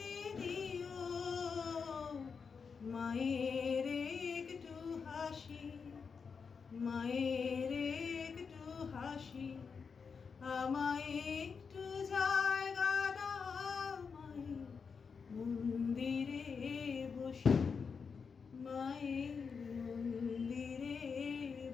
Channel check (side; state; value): right; quieter; 5.7 dB